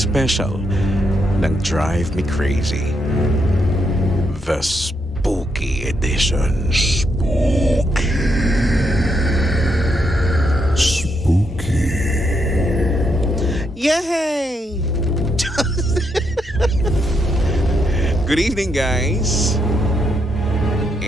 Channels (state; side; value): normal; both; correlation 0.79